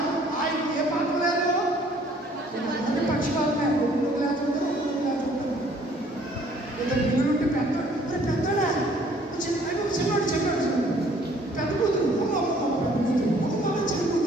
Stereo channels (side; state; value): both; normal; correlation 0.59